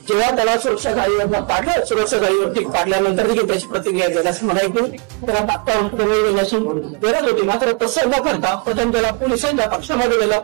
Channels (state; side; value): quieter; left; 31.6 dB